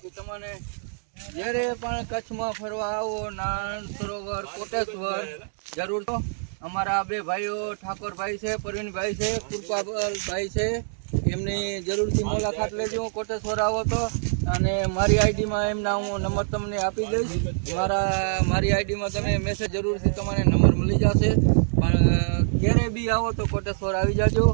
તમને જ્યારે પણ કચ્છમાં ફરવા આવો નારાયણ સરોવર કોટેશ્વર જરૂર તો અમારા બે ભાઈઓ ઠાકોરભાઈ છે, પરવીનભાઈ છે, કૃપાભાઈ છે, એમની જરૂરથી મુલાકાત લેજો કોટેશ્વર આવો તો. અને મારી આઈડીમાં એમના હું નંબર તમને આપી દઈશ. મારી આઈડીમાં તમે મેસેજ જરૂરથી તમારે નંબર મળી જશે. પણ ક્યારે બી આવો તો કોટેશ્વર આવી જાજો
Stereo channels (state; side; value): silent; left; 62 dB below the other